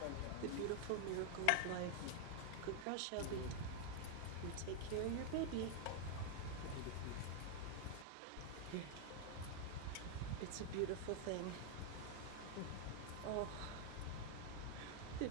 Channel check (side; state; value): both; different; correlation 0.00